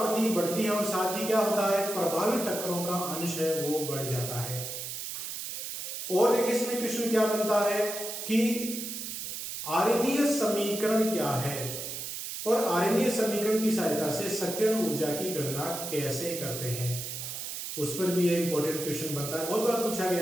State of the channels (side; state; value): right; noise; hiss, 6 dB below the sound